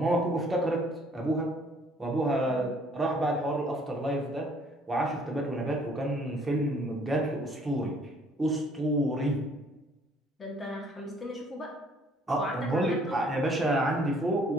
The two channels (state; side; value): normal; both; correlation 0.61